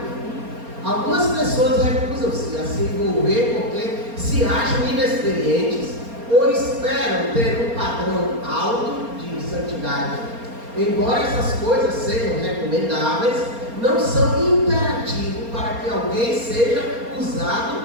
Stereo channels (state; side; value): late; left; 4.3 ms